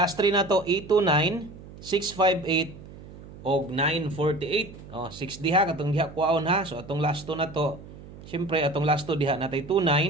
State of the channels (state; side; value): noise; right; hum, 17 dB below the sound